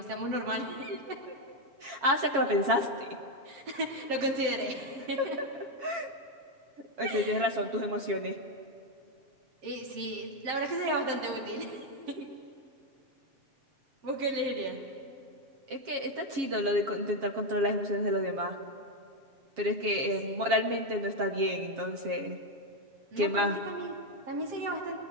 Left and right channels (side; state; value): left; late; 7.3 ms